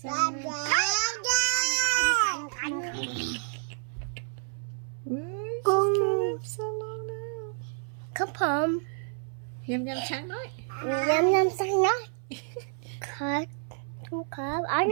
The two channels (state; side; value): silent; left; 56 dB below the other